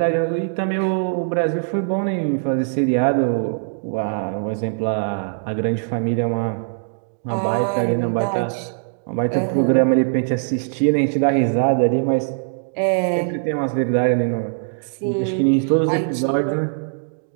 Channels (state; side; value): silent; left; digital silence